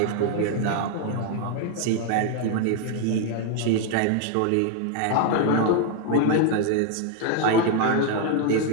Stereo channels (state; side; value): different; both; correlation 0.01